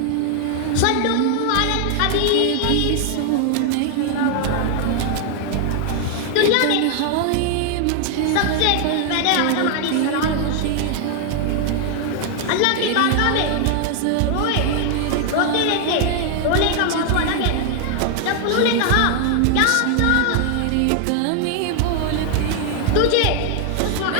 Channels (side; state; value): both; different; correlation 0.00